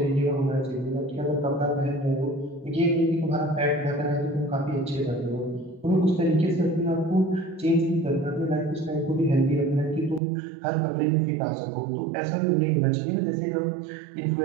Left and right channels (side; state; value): left; drops out; at 10.2 s